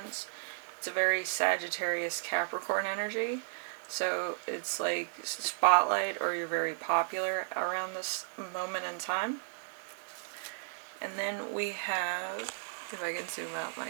It's a very Sagittarius Capricorn energy. So it's like spotlight, or you're very popular around this moment in time. And then we have, if I can zoom out my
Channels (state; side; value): silent; left; digital silence